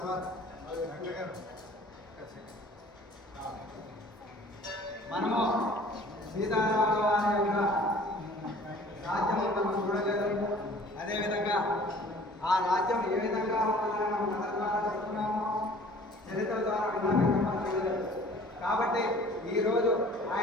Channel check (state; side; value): normal; both; correlation 0.50